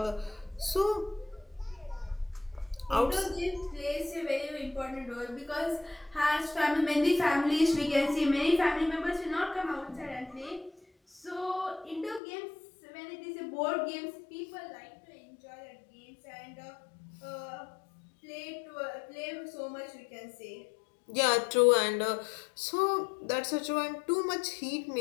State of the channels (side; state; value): right; drops out; at 12.2 s